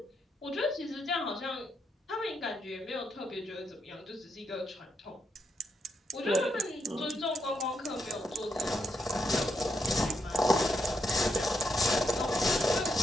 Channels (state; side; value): normal; both; correlation 0.79